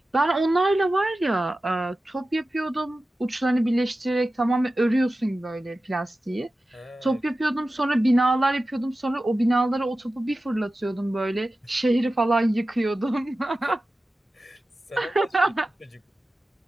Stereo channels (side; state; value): both; normal; correlation 0.95